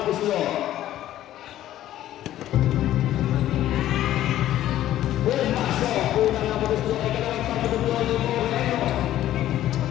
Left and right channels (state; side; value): quieter; right; 13.1 dB